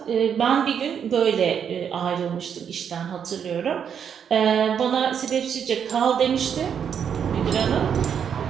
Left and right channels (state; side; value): quieter; left; 7.8 dB